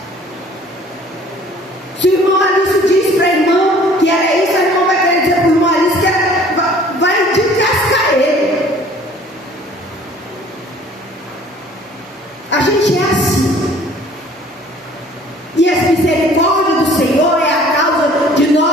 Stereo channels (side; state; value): both; normal; correlation 0.53